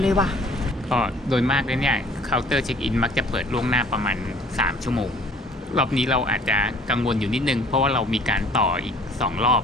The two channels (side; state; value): both; normal; correlation 0.53